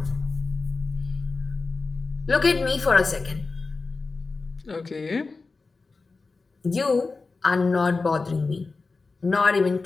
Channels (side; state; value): right; quieter; 4.0 dB